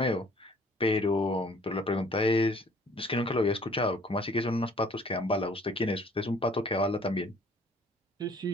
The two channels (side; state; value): both; normal; correlation 0.56